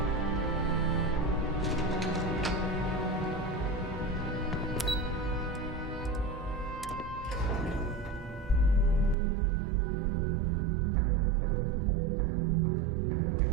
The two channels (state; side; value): drops out; left; at 9.2 s